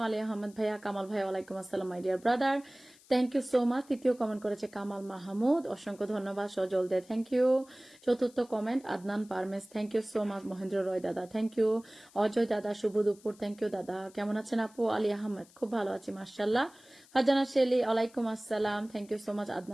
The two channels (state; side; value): noise; left; hiss, 26 dB below the sound